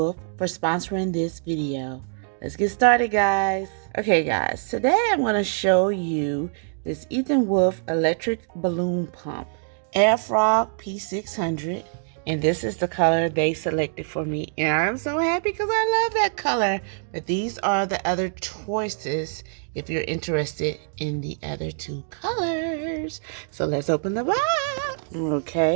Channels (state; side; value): silent; left; digital silence